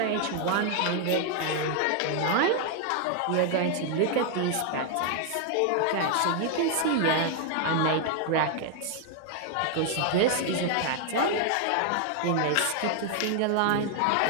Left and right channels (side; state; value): both; different; correlation 0.00